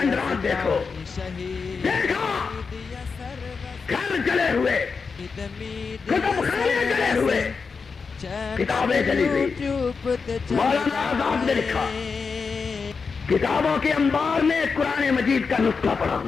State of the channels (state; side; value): quieter; right; 5.1 dB